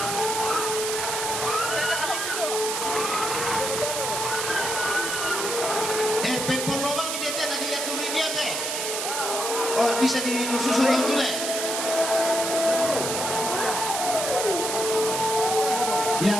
Pempol lobang ini dia tadi ya turun dia teh. Oh, bisa disusun yang dulu.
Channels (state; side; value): noise; right; hiss, 2 dB below the sound